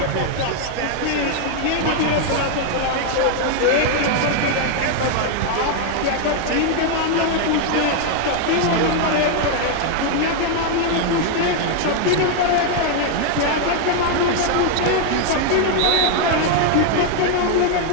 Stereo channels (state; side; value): different; both; correlation 0.00